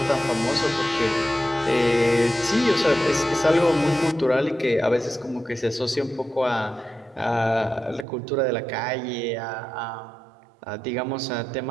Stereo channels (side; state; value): left; drops out; at 8.1 s